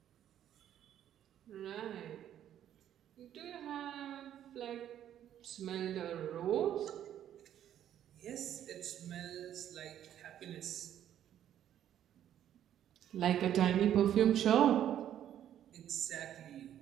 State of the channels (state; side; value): quieter; left; 10.8 dB